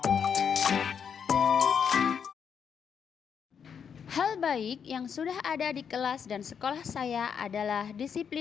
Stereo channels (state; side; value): quieter; right; 7.2 dB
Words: Hal baik yang sudah ada di kelas dan sekolah saya adalah